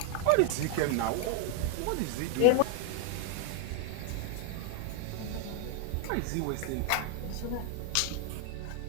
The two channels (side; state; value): both; different; correlation 0.00